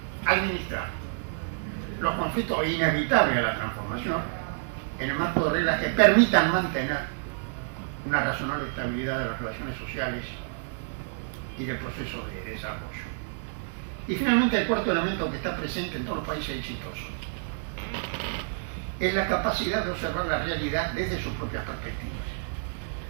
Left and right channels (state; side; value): silent; left; digital silence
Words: administrar los conflictos inevitables de la transformación en el marco de reglas que permitan mantener una razonable estabilidad de las relaciones sociales y del proceso de desarrollo. Y finalmente el cuarto elemento que está presente en todos los países exitosos es la capacidad de observar la realidad desde sus propias perspectivas.